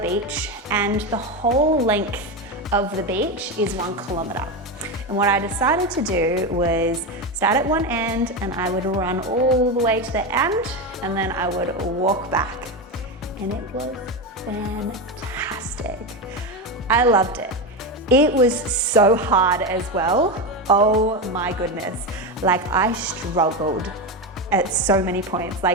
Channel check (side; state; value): both; normal; correlation 0.15